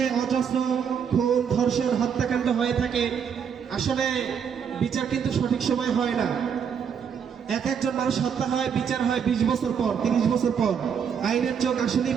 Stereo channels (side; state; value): left; quieter; 7.3 dB